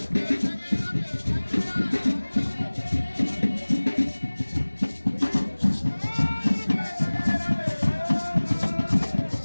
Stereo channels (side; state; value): both; inverted; correlation -1.00